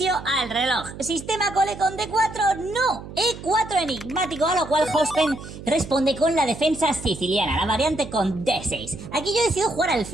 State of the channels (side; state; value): right; noise; hum, 13 dB below the sound